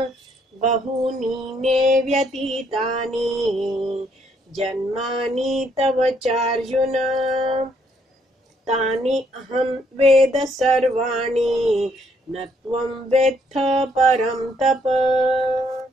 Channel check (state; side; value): normal; both; correlation 0.70